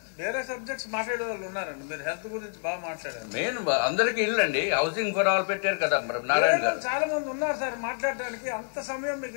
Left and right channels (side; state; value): right; silent; digital silence